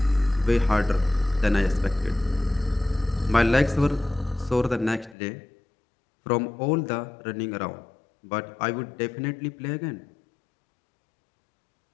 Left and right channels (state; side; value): drops out; right; at 5.2 s